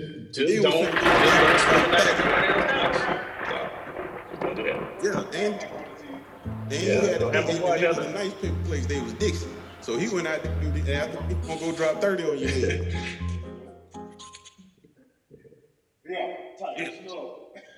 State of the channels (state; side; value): identical; both; correlation 1.00